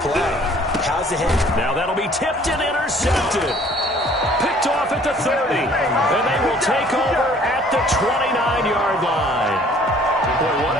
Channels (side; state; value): both; normal; correlation 0.56